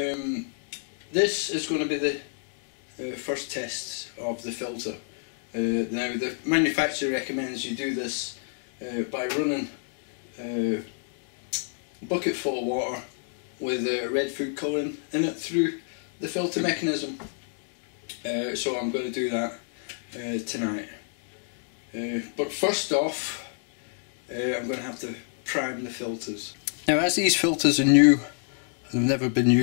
is going to be the first test of the filter. Now the manufacturer recommends you do this by running a bucket full of water with red food colouring in it through the filter mechanism. So I'm going to do that tonight. But first off, I'm going to have to prime the filters. Now, as these filters are new and have never been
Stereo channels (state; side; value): silent; right; 59 dB below the other